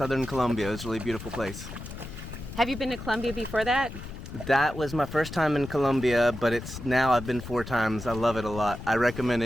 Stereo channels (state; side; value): noise; left; rumble, 11 dB below the sound